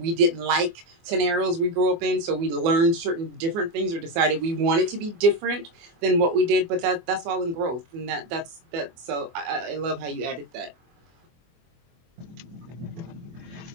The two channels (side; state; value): left; late; 24 ms